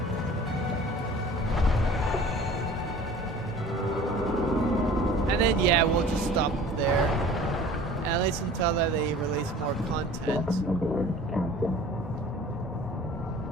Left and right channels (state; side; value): normal; both; correlation 0.45